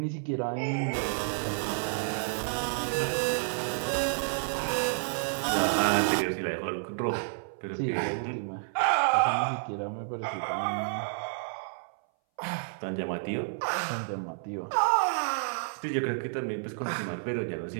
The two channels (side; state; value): left; silent; 58 dB below the other